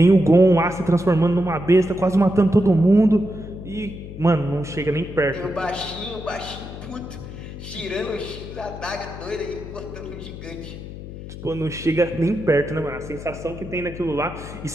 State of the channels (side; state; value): left; noise; hum, 12 dB below the sound